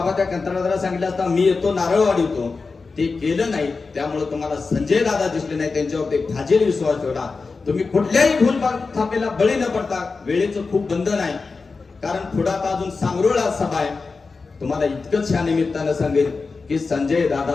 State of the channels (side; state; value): right; quieter; 4.3 dB